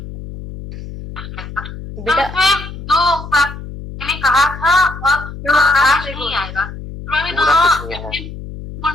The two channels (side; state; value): left; noise; hum, 11 dB below the sound